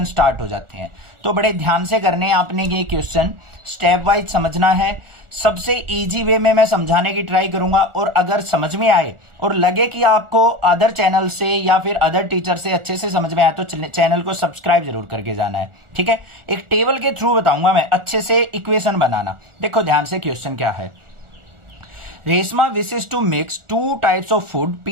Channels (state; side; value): late; left; 1.4 ms